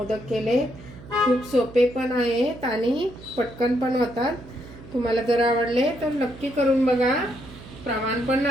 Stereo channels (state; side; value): noise; right; hum, 17 dB below the sound